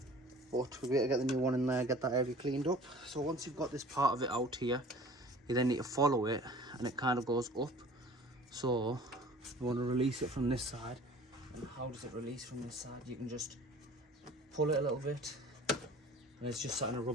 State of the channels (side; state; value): both; normal; correlation 0.47